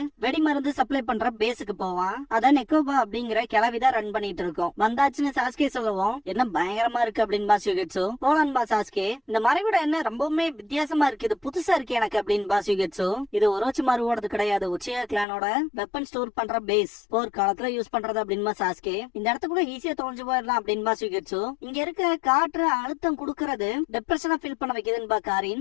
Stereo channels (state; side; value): drops out; right; at 15.2 s